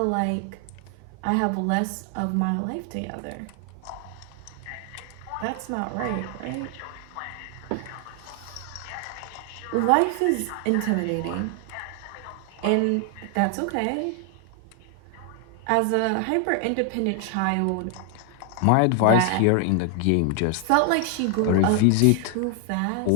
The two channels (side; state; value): both; different; correlation 0.00